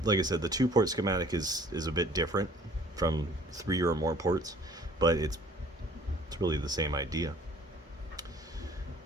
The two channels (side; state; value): both; normal; correlation 0.54